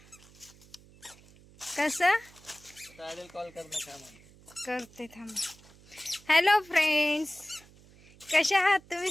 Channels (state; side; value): noise; right; hum, 25 dB below the sound